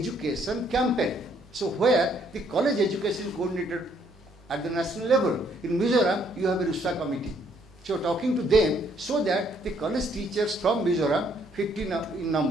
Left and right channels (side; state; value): both; normal; correlation 0.68